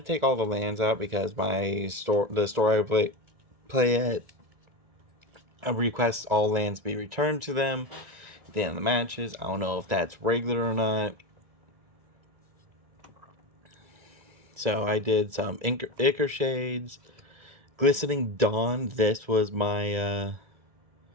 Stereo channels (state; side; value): late; left; 1.5 ms